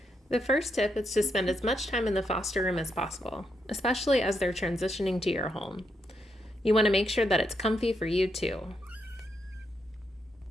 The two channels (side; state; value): both; normal; correlation 0.80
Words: The first tip is to spend as much time in the foster room as possible, especially as they're transitioning to your home. You want to make sure that it's comfy for you too.